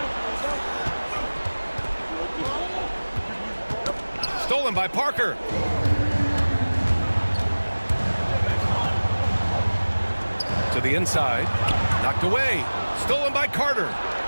Stolen by Parker. To the inside. Knocked away. Stolen by Carter.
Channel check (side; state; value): both; inverted; correlation -1.00